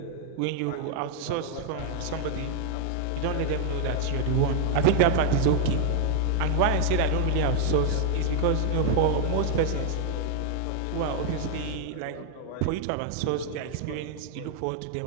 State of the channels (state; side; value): different; both; correlation 0.00